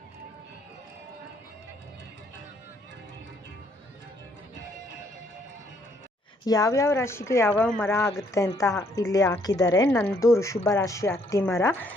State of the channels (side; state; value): both; normal; correlation 0.68